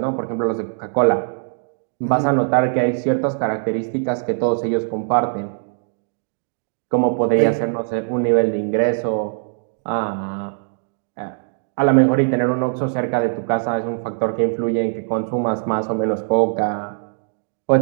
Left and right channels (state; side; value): silent; left; 65 dB below the other